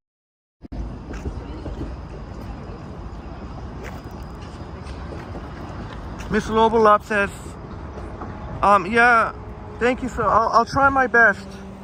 Miss Lobolop says, yeah, thank you. So I'll try my best.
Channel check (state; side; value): identical; both; correlation 1.00